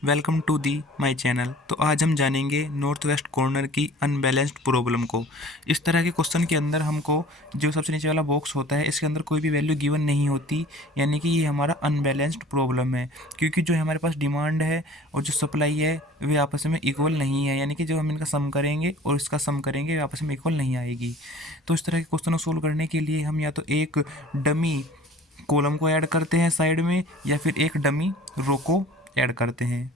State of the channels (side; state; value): both; normal; correlation 0.47